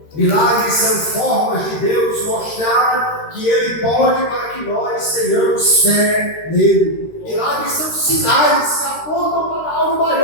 Milagres são formas de Deus mostrar que Ele pode para que nós tenhamos fé nele. Milagres são sinais que apontam para algo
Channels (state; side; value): late; right; 13 ms